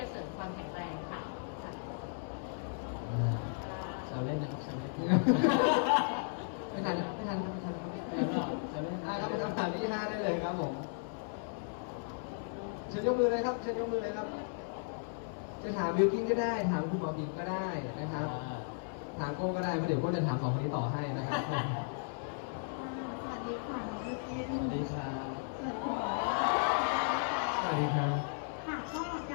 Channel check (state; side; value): silent; right; digital silence